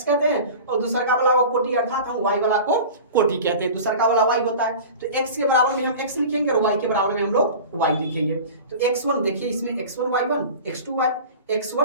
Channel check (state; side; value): inverted; both; correlation -0.37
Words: कहते हैं, और दूसरा का वाला को कोटि अर्थात हम y वाला को कोटि कहते हैं, दूसरा का वाला y होता है। तो x के बराबर में हम x लिखेंगे और y के बराबर में हम लोग y लिखेंगे। तो x1 देखिए इसमें x1 y1